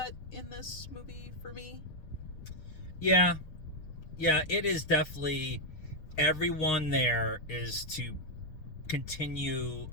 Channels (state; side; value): late; right; 6.5 ms